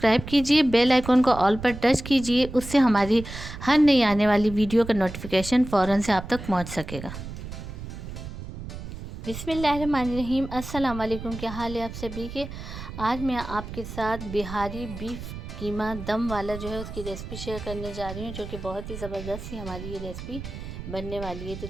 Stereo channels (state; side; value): noise; right; rumble, 10 dB below the sound